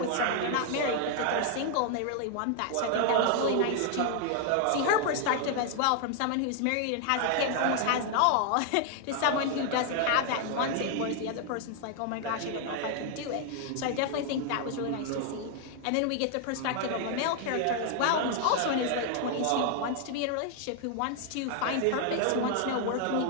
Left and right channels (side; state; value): both; different; correlation 0.00